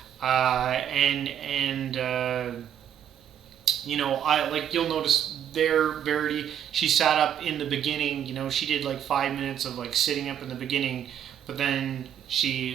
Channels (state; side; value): quieter; left; 9.7 dB